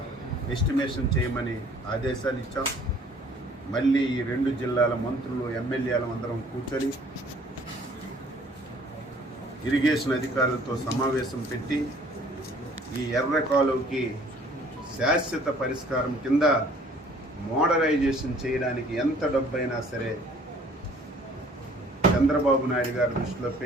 ఎస్టిమేషన్ చేయమని ఆదేశాలు ఇచ్చాం. మళ్ళీ ఈ 2 జిల్లాల మంత్రులు ఎమ్మెల్యేలు అందరం కూర్చొని ఇరిగేషన్ అధికారులతో సమావేశం పెట్టి ఈ ఎర్ర కాలువకి శాశ్వత పరిష్కారం కింద మోడరైజేషన్ చేయడానికి ఎంత డబ్బైనా సరే చంద్రబాబు నాయుడు గారి దృష్టిలో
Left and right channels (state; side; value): normal; both; correlation 0.56